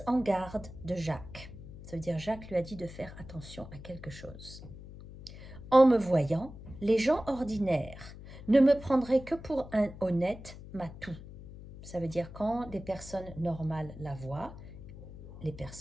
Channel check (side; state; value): left; noise; hum, 15 dB below the sound